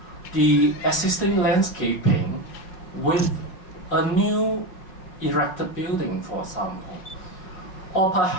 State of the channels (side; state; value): right; late; 5.4 ms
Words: the existing landscaping with a new erected building, for example. Or